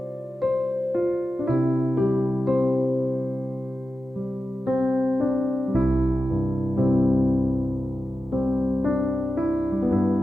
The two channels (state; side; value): normal; both; correlation 0.93